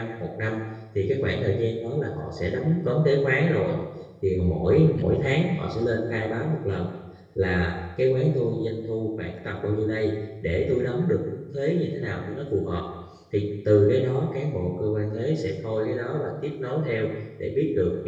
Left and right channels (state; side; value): identical; both; correlation 1.00